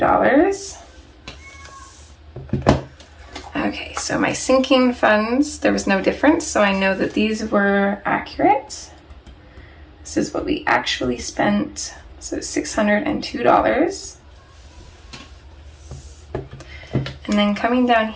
Okay, so my sinking funds, there was no difference, so I know that these were accurate. This is what we actually spent, so $602. And then coming down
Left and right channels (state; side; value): identical; both; correlation 1.00